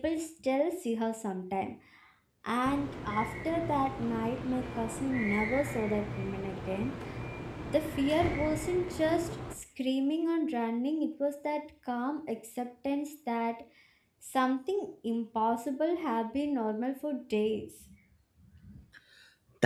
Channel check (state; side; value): identical; both; correlation 1.00